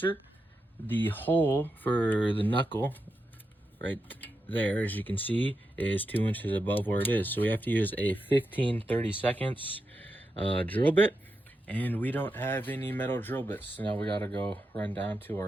The hole for the knuckle right there, as you can see, is 2 inches above where it is. So we have to use a 15/32 drill bit, and we don't have any metal drill bits. So now we gotta go run down to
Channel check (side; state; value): both; normal; correlation 0.87